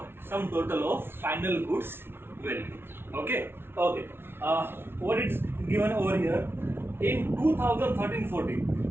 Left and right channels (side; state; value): left; late; 0.11 ms